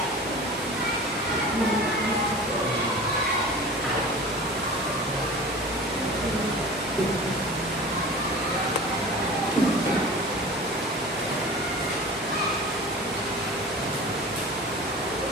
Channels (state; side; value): normal; both; correlation 0.37